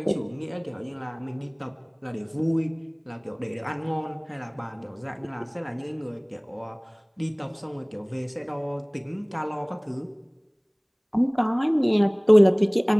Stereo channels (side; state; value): both; identical; correlation 1.00